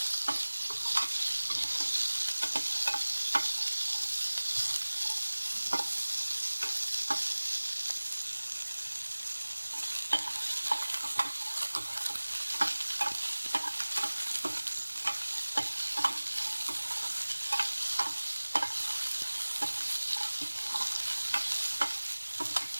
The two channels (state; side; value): inverted; both; correlation -1.00